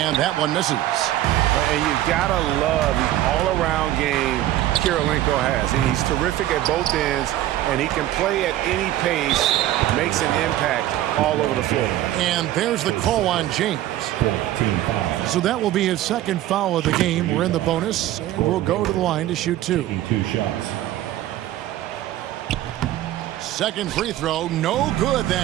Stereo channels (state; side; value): quieter; left; 13.9 dB